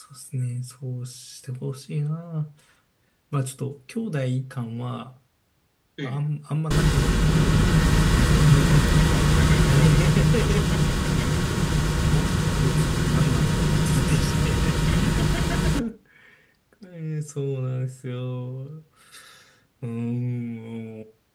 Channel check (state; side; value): identical; both; correlation 1.00